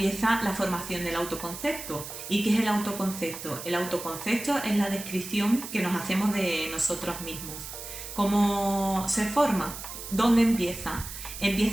la formación del autoconcepto. ¿Y qué es el autoconcepto? El autoconcepto es la descripción que nos hacemos de nosotros mismos. ¿Cómo se forma? ¿Dónde empieza?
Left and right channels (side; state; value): right; noise; hiss, 10 dB below the sound